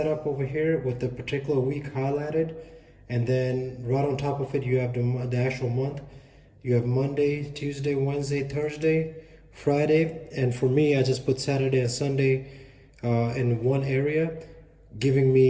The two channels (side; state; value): both; identical; correlation 1.00